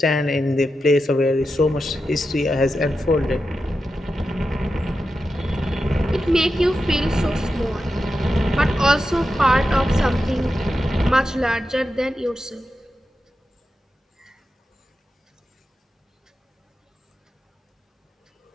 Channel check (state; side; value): normal; both; correlation 0.90